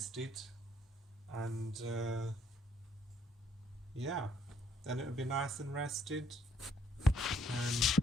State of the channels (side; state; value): both; normal; correlation 0.66